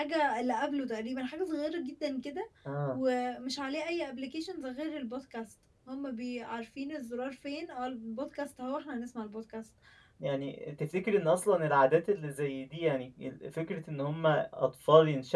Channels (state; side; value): identical; both; correlation 1.00